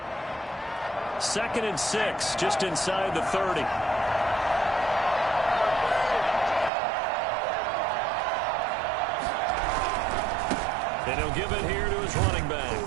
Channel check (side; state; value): left; drops out; at 6.7 s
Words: 2nd and 6, just inside the 30. And he'll give it here to his running back.